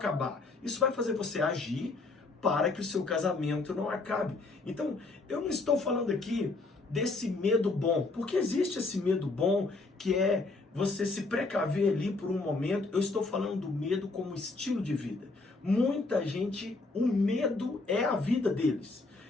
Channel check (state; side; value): quieter; right; 3.5 dB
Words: Isso vai fazer você agir para que o seu casamento não acabe. Então, eu não estou falando aqui desse medo bom, porque existe esse medo bom que é você se precaver ali por um momento. Eu estou falando do medo como estilo de vida. Muita gente, o medo é a vida deles.